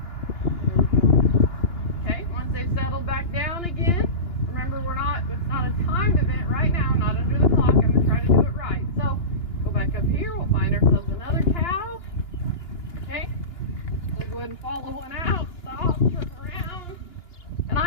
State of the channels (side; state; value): right; late; 2.9 ms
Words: we go. Okay, once they've settled back down again, remember it's not a timed event right now, I'm not under the clock, I'm going to try to do it right. So, go back up here, we'll find ourselves another cow. Okay? We'll go ahead and follow one out, stop, turn around. And